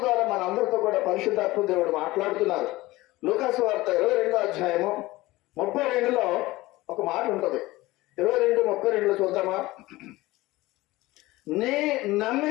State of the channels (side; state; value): right; quieter; 19.2 dB